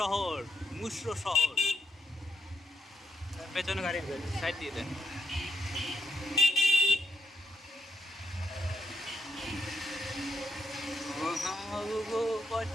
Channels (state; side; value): normal; both; correlation 0.79